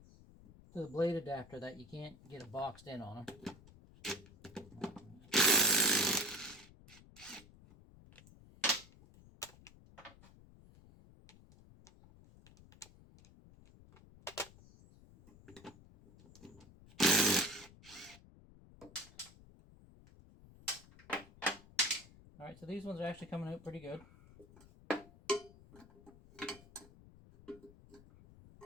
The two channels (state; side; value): noise; left; rumble, 22 dB below the sound